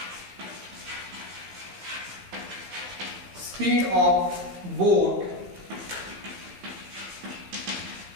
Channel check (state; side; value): late; left; 15 ms